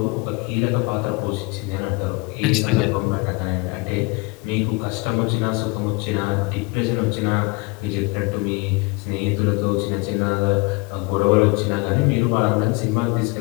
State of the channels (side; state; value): right; quieter; 27.7 dB